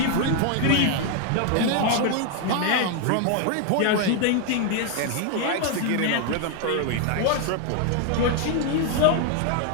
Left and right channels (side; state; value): both; different; correlation 0.01